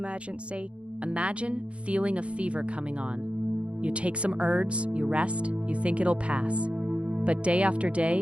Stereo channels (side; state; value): left; late; 0.060 ms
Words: Imagine feeling a fever coming on. You take some herbs, you rest, you think it'll pass. But day after